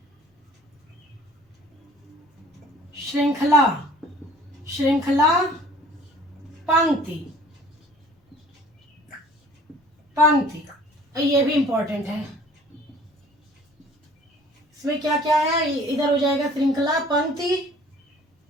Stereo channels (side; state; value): both; normal; correlation 0.51